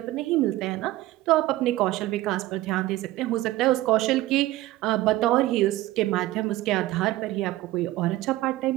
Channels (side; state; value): left; quieter; 16.7 dB